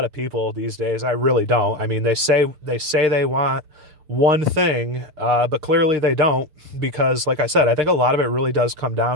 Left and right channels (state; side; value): late; left; 6.6 ms